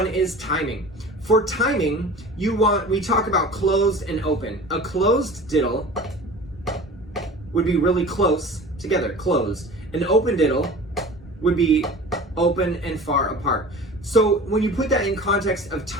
is timing. For timing, we talk about closed and open. A closed diddle would be really close together, closed. An open diddle would be open and far apart. So when you put that in context of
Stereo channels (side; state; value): both; normal; correlation 0.39